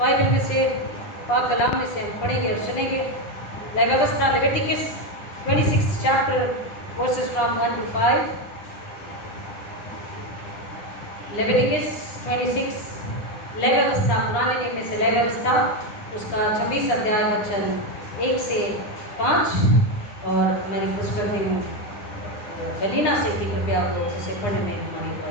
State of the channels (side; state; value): right; late; 9.8 ms